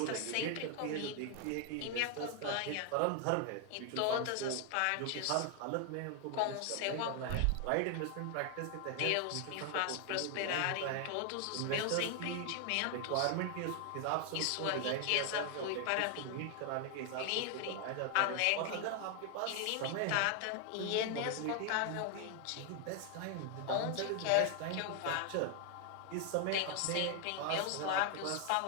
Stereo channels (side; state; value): both; different; correlation 0.00